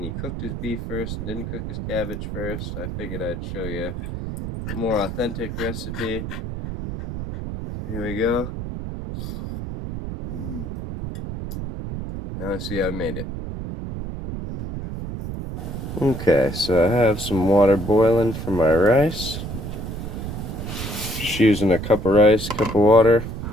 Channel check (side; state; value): right; noise; rumble, 6 dB below the sound